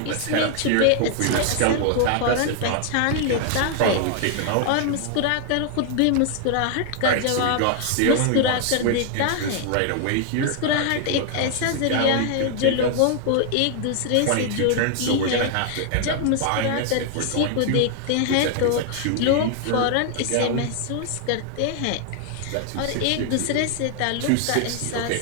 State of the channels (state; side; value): different; both; correlation 0.00